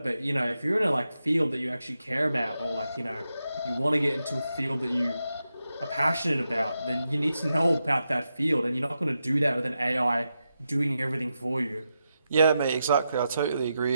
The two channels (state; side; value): inverted; both; correlation -0.87